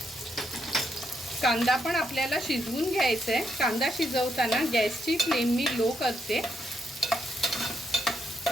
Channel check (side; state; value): both; normal; correlation 0.78